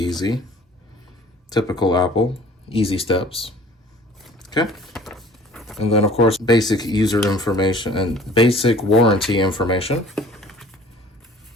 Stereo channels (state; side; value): normal; both; correlation 0.51